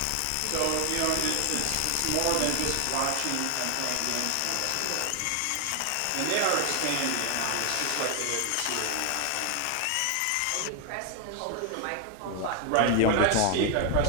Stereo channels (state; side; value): different; both; correlation 0.00